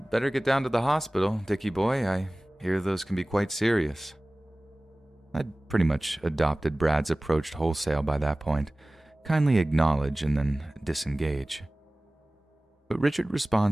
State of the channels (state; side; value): normal; both; correlation 0.98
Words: get down to the hospital, Dickie boy. I hear those can be quite serious." I'd pretty much adopted Brad's approach wholesale by that point, kindly acknowledge and then disengage. But Richard